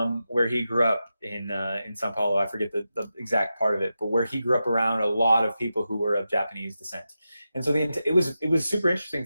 where he grew up in Sao Paulo. I forget the exact part of it, but where he grew up around a lot of people who were of Japanese descent. And so it was super interesting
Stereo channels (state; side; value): inverted; both; correlation -0.90